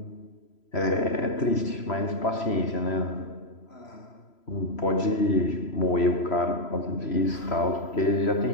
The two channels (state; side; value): late; right; 3.0 ms